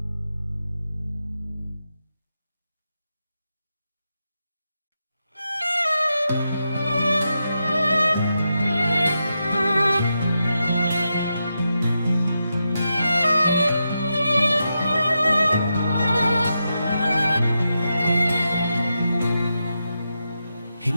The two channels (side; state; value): both; inverted; correlation -0.87